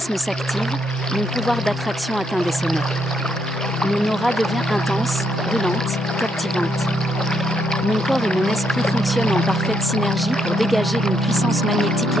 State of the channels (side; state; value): both; normal; correlation 0.76